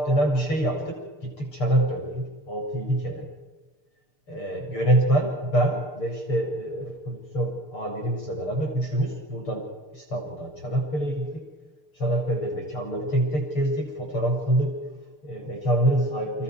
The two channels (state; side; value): late; right; 6.7 ms